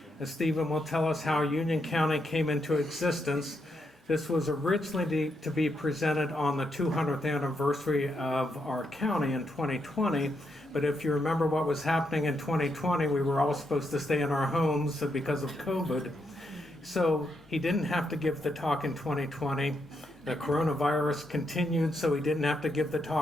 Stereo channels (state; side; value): normal; both; correlation 0.80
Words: Stephen will tell us how Union County came into existence. This was originally to be presented on the 200th anniversary of our county in 2020, but if you remember what was happening in 2020, we were all supposed to stay in our homes because of COVID. So he didn't have to give the talk in 2020. The coronavirus continued, so he didn't have to give the